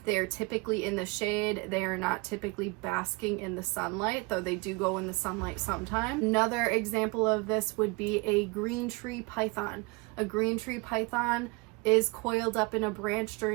They are typically in the shade. They are not typically basking in the sunlight, though they do go in the sunlight sometime. Another example of this would be a green tree python. A green tree python is coiled up in a branch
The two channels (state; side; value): quieter; left; 27.3 dB